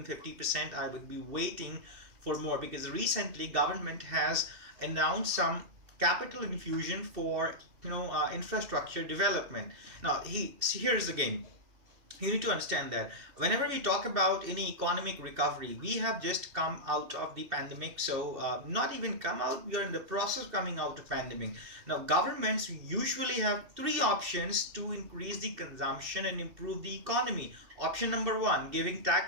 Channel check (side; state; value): left; late; 2.7 ms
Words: 50%. I would be waiting for more, because recently government has announced some capital infusion for infrastructure development. Now here's the game. You need to understand that whenever we talk about any economic recovery, we have just come out of the pandemic. So not even come out, we are in the process of coming out of pandemic. Now governments usually have three options to increase the consumption and improve the economy. Option number one, giving